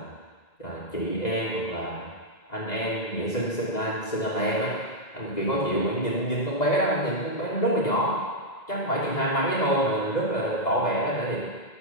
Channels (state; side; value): late; right; 2.0 ms